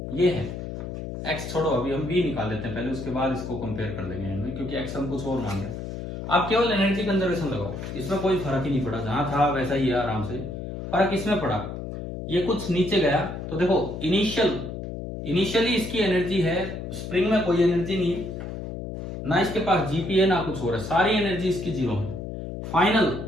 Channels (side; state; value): left; noise; hum, 7 dB below the sound